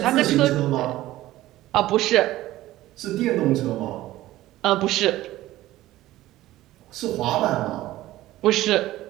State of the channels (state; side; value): quieter; left; 15.8 dB